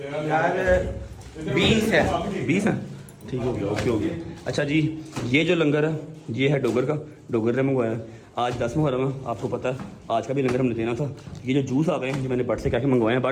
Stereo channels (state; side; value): identical; both; correlation 1.00